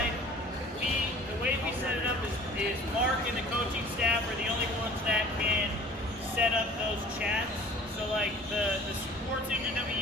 the way we set it up is Mark and the coaching staff are the only ones that can set up those chats. So the sports engine that we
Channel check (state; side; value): normal; both; correlation 0.47